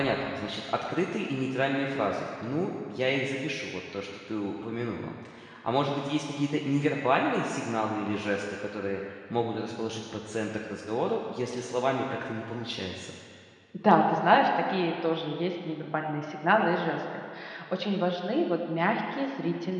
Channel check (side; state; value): both; identical; correlation 1.00